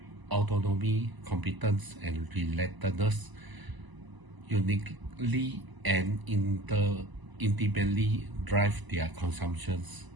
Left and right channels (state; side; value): late; left; 1.0 ms